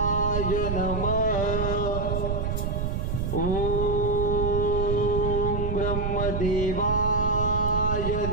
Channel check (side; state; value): right; noise; rumble, 1 dB below the sound